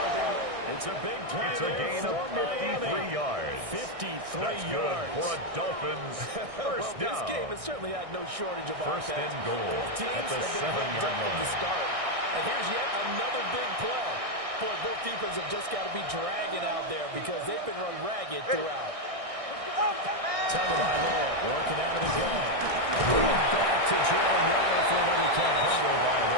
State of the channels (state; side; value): late; left; 1.6 ms